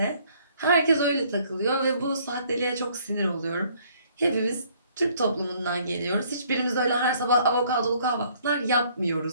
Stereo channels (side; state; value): both; inverted; correlation -0.62